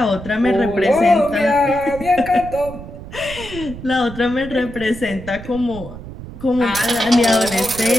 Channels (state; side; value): noise; right; rumble, 13 dB below the sound